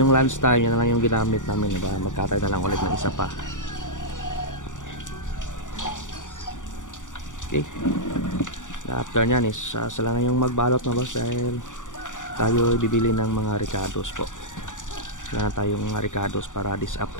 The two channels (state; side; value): late; right; 0.87 ms